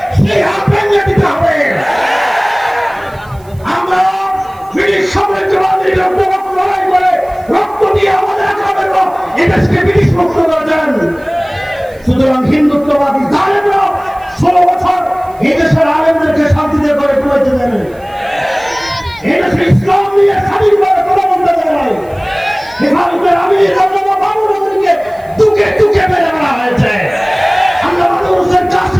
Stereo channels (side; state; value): right; noise; hiss, 29 dB below the sound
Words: সেই হাত ভেঙে দিতে হবে। আমরা ব্রিটিশ সাম্রাজ্যবাদীর লড়াই করে রক্ত দিয়ে আমাদের একাবেলা এদেশকে ব্রিটিশ মুক্ত করেছেন। সুতরাং হিন্দুত্ববাদী জালেমরা 16 বছর এই দেশের আলেমদেরকে শান্তিতে করে তুলেছে দেন। এই দেশে ইসলাম নিয়ে স্বাধীনভাবে কথা বলতে দেয়। ভারতের আমির বাবুকে দুকে দুকে মেরে মারা হয়েছে। আমরা মানুষের